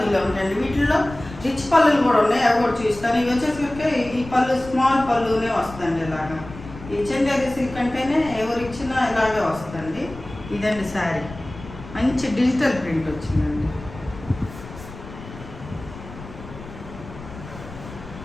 ఉంటాయండి. వీటిల్లో రిచ్ పళ్ళులు కూడా ఉన్నాయి, అవి కూడా చూస్తాను. ఇవి వచ్చేసరికి ఈ పళ్ళు స్మాల్ పళ్ళునే వస్తుందండి. ఇలాగా ఈ చందేరి సిల్క్ అంటేనే ఎవరు ఇచ్చినా ఇలాగే వస్తుందండి. ఇదండి శారీ. మంచి డిజిటల్ ప్రింట్ వచ్చిందండి.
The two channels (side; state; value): left; noise; rumble, 15 dB below the sound